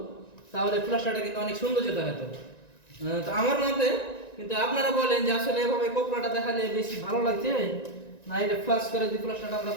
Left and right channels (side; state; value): right; late; 1.9 ms